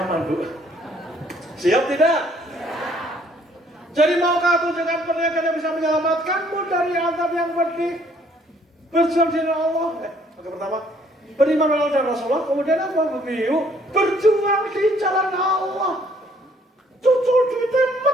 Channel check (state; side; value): normal; both; correlation 0.63